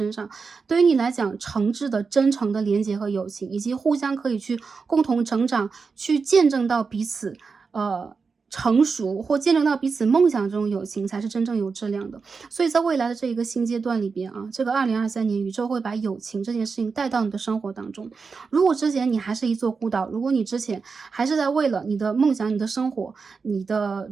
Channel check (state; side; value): quieter; left; 5.0 dB